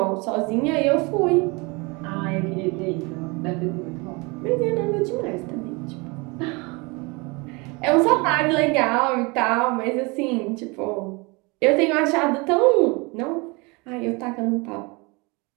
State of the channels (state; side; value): quieter; left; 27.4 dB